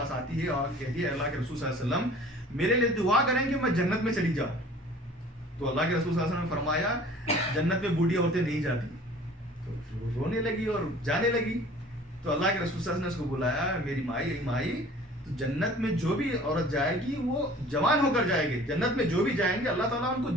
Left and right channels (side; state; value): both; normal; correlation 0.48